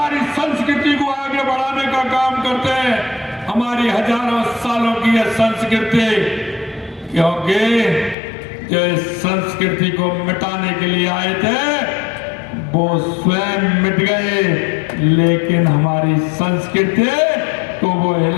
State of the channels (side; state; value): right; drops out; at 8.2 s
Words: संस्कृति को आगे बढ़ाने का काम करते हैं, हमारी हजारों सालों की यह संस्कृति, क्योंकि जो इस संस्कृति को मिटाने के लिए आए थे वो स्वयं मिट गए, लेकिन हमारी संस्कृति को वो